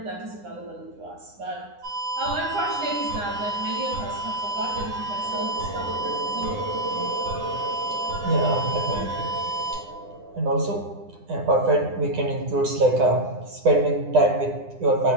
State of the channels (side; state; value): left; late; 9.8 ms